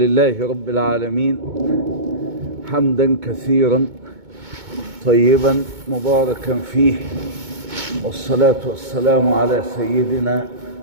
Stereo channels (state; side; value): late; left; 2.2 ms